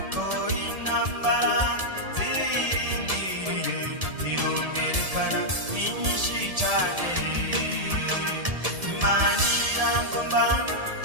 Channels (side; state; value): left; late; 1.7 ms